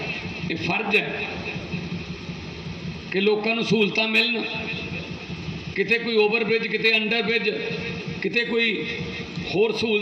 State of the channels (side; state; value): both; identical; correlation 1.00